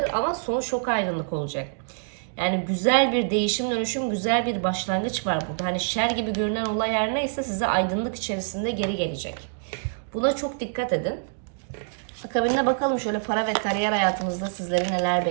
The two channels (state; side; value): silent; left; digital silence